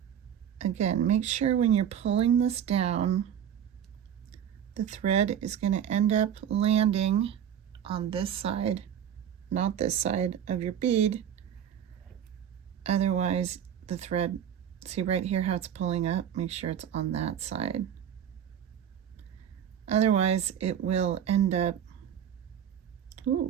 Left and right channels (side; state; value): left; quieter; 9.3 dB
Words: Again, make sure when you're pulling this down, the thread is going to end up landing on this side, not this side of your bead. Otherwise, the thread, see right here how it's pulling up? Make sure it's on that side. Otherwise, it will end up,